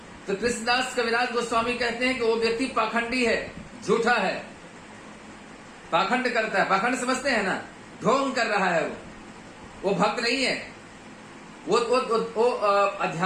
तो कृष्णदास कविराज गोस्वामी कहते हैं कि वो व्यक्ति पाखंडी है, झूठा है, पाखंड करता है। पाखंड समझते हैं ना? ढोंग कर रहा है, वो भक्त नहीं है, वो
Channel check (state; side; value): identical; both; correlation 1.00